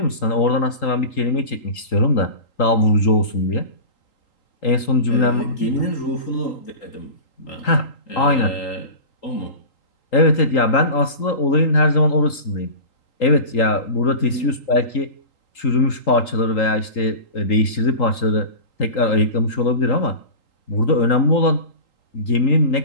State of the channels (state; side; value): late; right; 3.8 ms